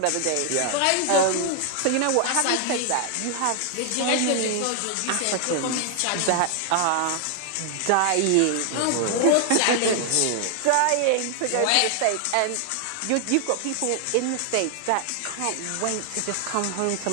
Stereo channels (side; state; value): both; different; correlation 0.00